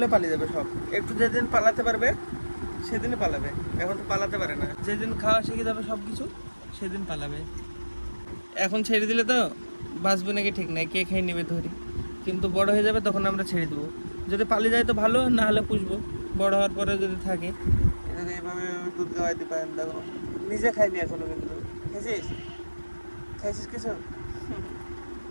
পালিয়ে যাবে সব। একটু যেদিন পালাতে পারবে সেদিনই পালাবে, এখন তো পালাতে পারে না। যেদিন খাওয়া শিখে যাবে সব কিছু সেদিন পালাবে। এখন ছেড়ে দিলে তো বাঁচবে নাকি ঠিক নাই, কে খেয়ে নেবে ধরি। কিন্তু বড় হয়ে যাবে তখন আমরা ছেড়ে দেবো। যদি পালিয়ে যায় তো ভালো, না হলে পুষবো। বড় হওয়ার পরে যদি থাকে, এটাকে এইভাবে দুধ খাওয়াই দিতে পারেন। দেখো নিজে খাইনি এখনো, কিন্তু খাইছিস কিছু?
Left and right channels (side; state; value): both; inverted; correlation -1.00